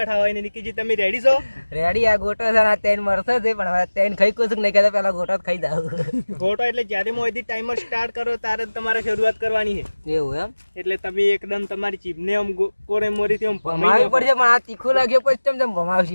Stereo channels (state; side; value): inverted; both; correlation -1.00